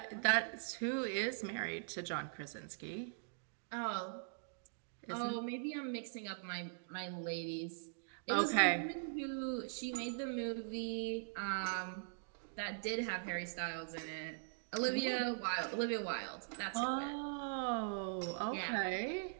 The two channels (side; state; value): left; silent; digital silence